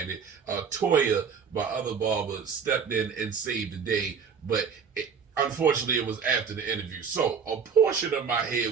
Toya, my other barber, stepped in and saved the day, but unfortunately it was after the interview. So a portion of my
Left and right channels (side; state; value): left; quieter; 6.4 dB